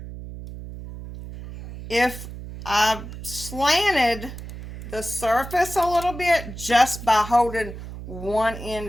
if I slanted the surface a little bit just by holding one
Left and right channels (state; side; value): noise; right; hum, 11 dB below the sound